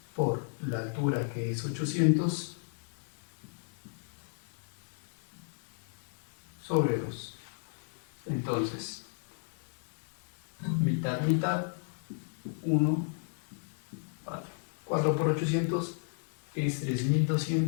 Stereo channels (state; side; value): silent; right; digital silence